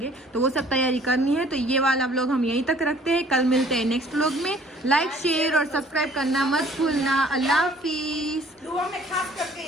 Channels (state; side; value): normal; both; correlation 0.55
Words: तो वो सब तैयारी करनी है। तो ये वाला व्लॉग हम यहीं तक रखते हैं, कल मिलते हैं नेक्स्ट व्लॉग में। लाइक शेयर और सब्सक्राइब करना मत भूलना। अल्लाह हाफिज। दुआ में खास करके